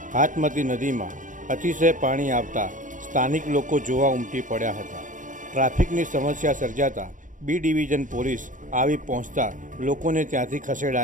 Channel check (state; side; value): late; left; 0.38 ms